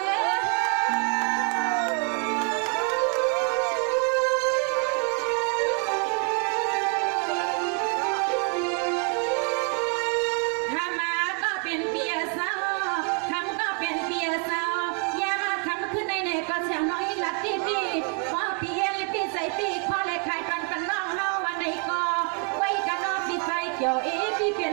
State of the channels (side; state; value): left; quieter; 39.5 dB